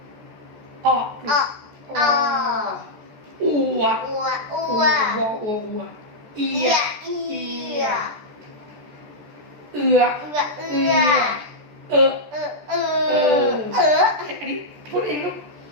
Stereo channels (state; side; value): late; left; 14 ms